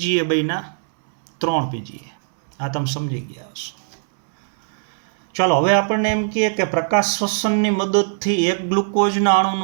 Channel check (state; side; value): silent; left; 65 dB below the other